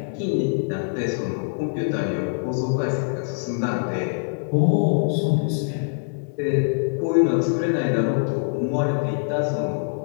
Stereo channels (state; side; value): silent; right; 63 dB below the other